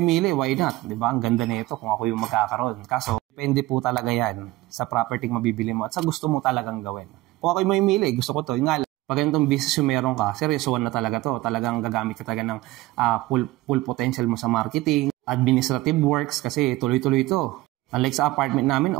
why not? Diba? Ang ganda nito kung ako yung magkakaroon. Kaso, depende po talaga yan sa property mabibili mo at sa gusto mo talagang gawin. Kung ako yung mamimili, gusto ko to. Yung nga lang, pag ganitong business yung meron ka, seryosoan na talaga to. Talagang gagamit ka talaga ng full potential mo sa marketing, administrative works, kasi tuloy-tuloy to. Unlike sa apartment namin,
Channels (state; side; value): quieter; left; 18.4 dB